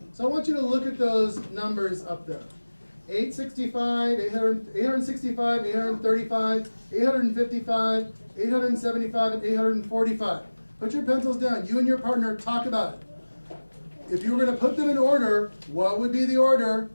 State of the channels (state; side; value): inverted; both; correlation -1.00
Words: So I want you to look at those numbers up there. 865, 865, 835, 855, 875, and 845. Put your pencils down. You and your partner talk about it. If you were going to put them in order, what would be the order?